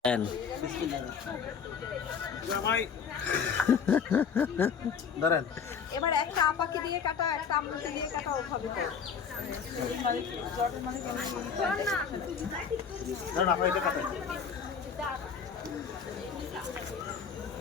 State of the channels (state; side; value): quieter; right; 6.6 dB